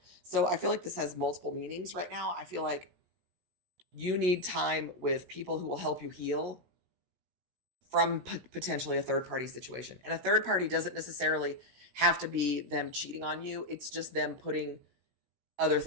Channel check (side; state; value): left; late; 17 ms